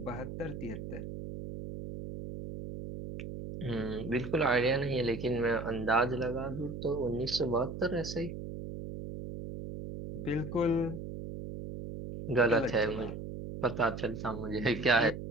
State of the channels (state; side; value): noise; right; hum, 8 dB below the sound